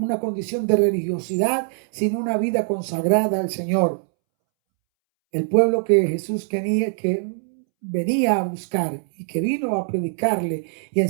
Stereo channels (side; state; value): left; silent; 64 dB below the other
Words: condición de religiosidad sin una vida consagrada al Señor. El pueblo que Jesús que venía a buscar y que vino a predicarle y a